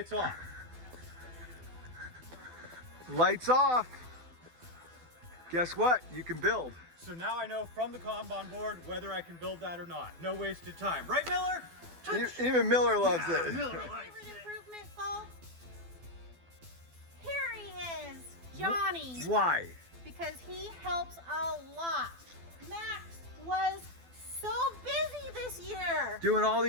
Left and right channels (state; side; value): late; left; 12 ms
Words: off. Lights off. Guess what? You can build. So now I know from the Kanban board whether I can build that or not. No wasted time. Right, Miller? Touch. Even Miller loves it. Miller My likes favorite it. improvement, folks? Here he is, Johnny. Why? Because he helps a lot. Max was so busy this year. Doing all